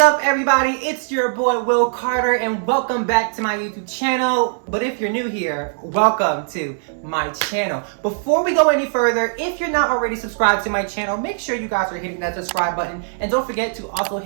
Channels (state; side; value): silent; left; digital silence